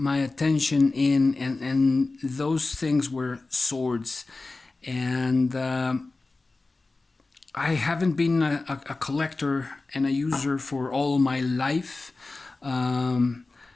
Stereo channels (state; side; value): quieter; right; 3.4 dB